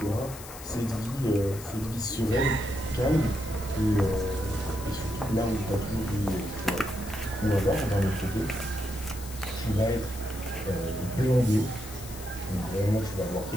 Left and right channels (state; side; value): noise; left; hiss, 14 dB below the sound